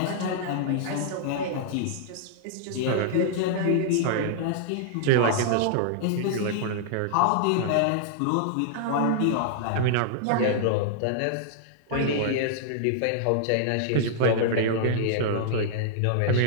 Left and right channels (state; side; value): different; both; correlation -0.01